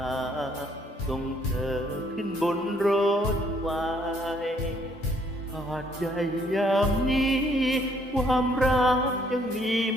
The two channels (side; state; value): both; normal; correlation 0.66